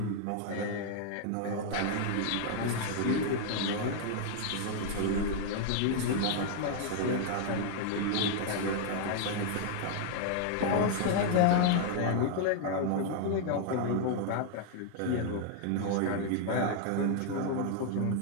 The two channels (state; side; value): different; both; correlation 0.00